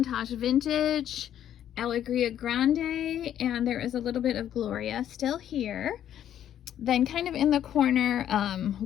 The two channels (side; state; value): right; quieter; 10.6 dB